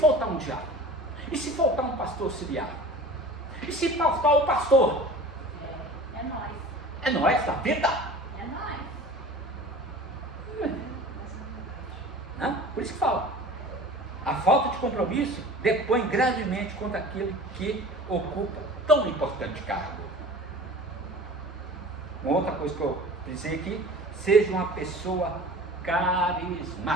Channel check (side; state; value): both; normal; correlation 0.40